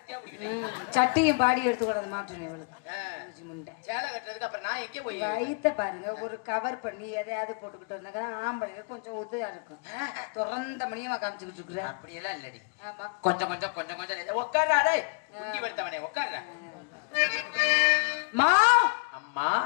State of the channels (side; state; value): right; quieter; 36.4 dB